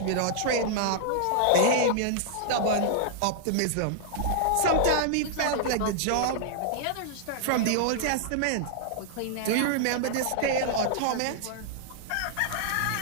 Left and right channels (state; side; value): different; both; correlation -0.01